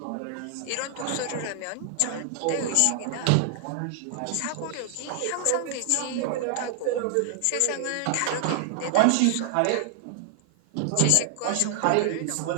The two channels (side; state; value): both; different; correlation 0.00